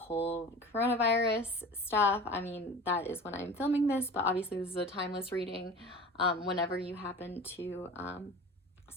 coronavirus stuff. I mean, that is when I'm filming this, but obviously this is a timeless reading. Whenever you happen to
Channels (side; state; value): both; normal; correlation 0.37